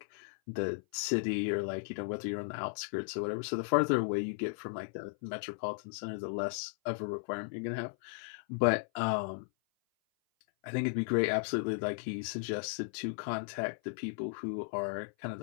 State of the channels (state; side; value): silent; right; 54 dB below the other